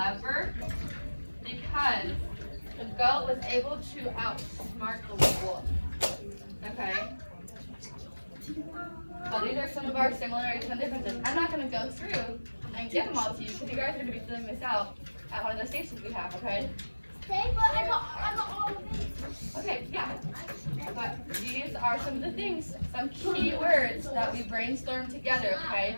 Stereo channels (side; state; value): both; inverted; correlation -1.00